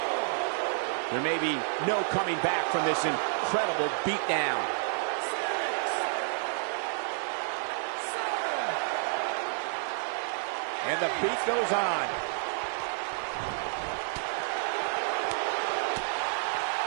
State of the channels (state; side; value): silent; left; digital silence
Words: There may be no coming back from this incredible beatdown. And the beat goes on.